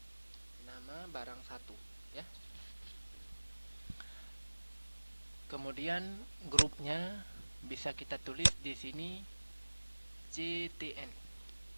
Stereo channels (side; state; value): both; inverted; correlation -1.00